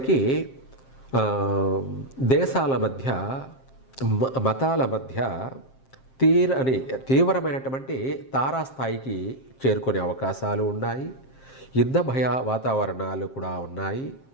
దేశాల మధ్య, మతాల మధ్య తీవ్రమైనటువంటి తారాస్థాయికి చేరుకునే అవకాశాలు ఉన్నాయి. యుద్ధ భయ వాతావరణాలు కూడా ఉన్నాయి.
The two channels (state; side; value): late; right; 7.5 ms